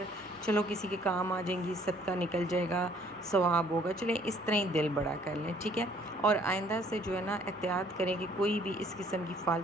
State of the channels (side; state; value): both; normal; correlation 0.60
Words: چلو کسی کے کام آ جائیں گی، صدقہ نکل جائے گا، ثواب ہوگا. چلیں اس طرح ہی دل بڑا کر لیں، ٹھیک ہے. اور آئندہ سے جو ہے نا احتیاط کریں کہ کوئی بھی اس قسم کی